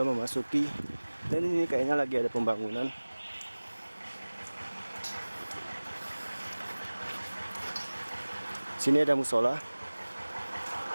memasuki dan ini kayaknya lagi ada pembangunan. Sini ada musola.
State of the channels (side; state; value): both; inverted; correlation -1.00